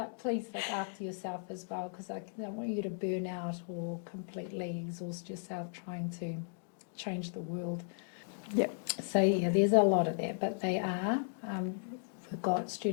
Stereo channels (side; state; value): right; silent; digital silence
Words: please look after yourself as well, because I don't want you to burn out or completely exhaust yourself trying to change the world. Yep. So there's a lot of that, but they are. We've got